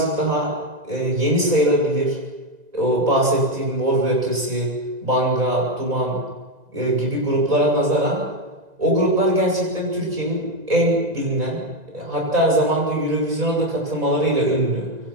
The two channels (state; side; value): late; left; 2.0 ms